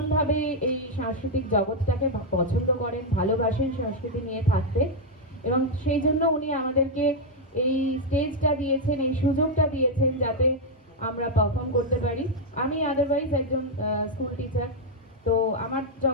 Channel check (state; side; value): normal; both; correlation 0.00